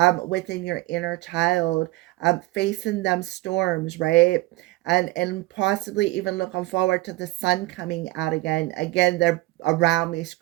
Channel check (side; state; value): left; quieter; 19.7 dB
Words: within your inner child, facing them storms, right? And possibly even looking forward to the sun coming out again. Again, they're around me